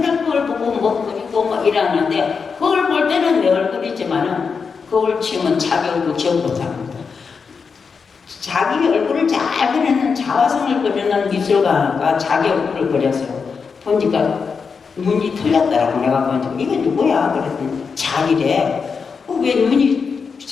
그걸 보고 뭐 그리고 뭐 이러는데 그걸 볼 때는 내 얼굴이지만은 그걸 치면 자기 얼굴 기억 못합니다. 자기 얼굴을 잘 그리는 자화상을 그리는 미술가가 자기 얼굴을 그렸어요. 보니까 눈이 틀렸더라고. 내가 보니까 이게 누구야? 그랬더니 자기래. 왜 눈이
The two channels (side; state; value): right; quieter; 5.5 dB